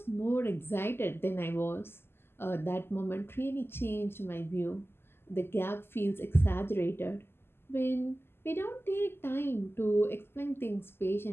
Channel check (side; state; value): right; late; 0.11 ms